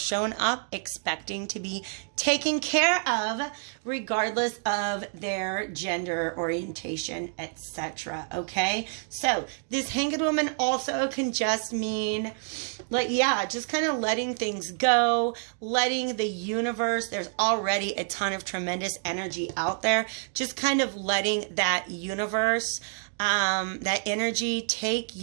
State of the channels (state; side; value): silent; left; 59 dB below the other